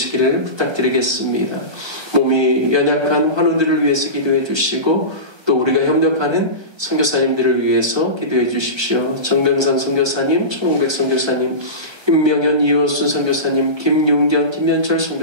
부탁드리겠습니다. 몸이 연약한 환우들을 위해서 기도해 주시고 또 우리가 협력하는 선교사님들을 위해서 기도해 주십시오. 정병상 선교사님, 천홍백 선교사님, 임명현, 이호순 선교사님, 김용경, 김현철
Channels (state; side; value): late; left; 1.2 ms